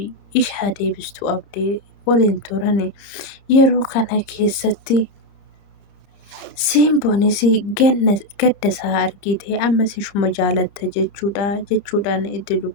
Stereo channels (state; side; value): late; right; 30 ms